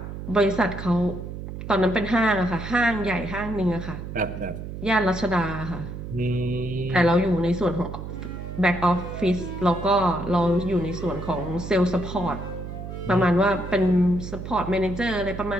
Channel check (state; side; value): noise; right; hum, 8 dB below the sound